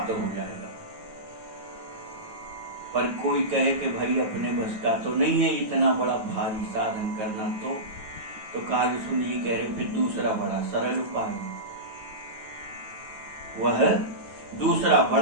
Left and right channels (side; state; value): left; late; 9.2 ms